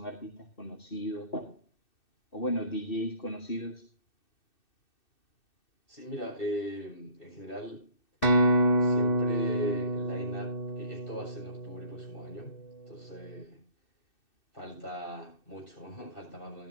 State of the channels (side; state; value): right; late; 2.6 ms